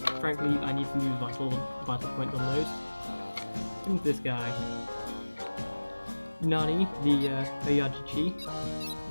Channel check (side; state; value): both; inverted; correlation -1.00